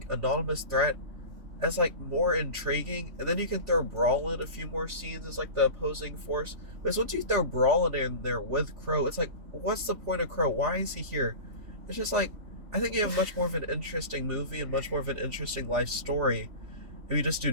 anonymous threat, as like more intriguing, and then you can throw Brawl in a few more scenes as like the opposing force. Because once you throw Brawl in there with Crow, it's like, what's the point of Crow? Why is he here? It's just like, I think you have much more of an interesting movie and much more of an interesting life story if you just do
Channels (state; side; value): late; left; 3.4 ms